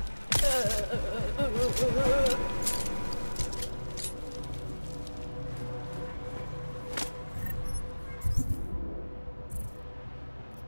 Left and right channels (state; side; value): inverted; both; correlation -1.00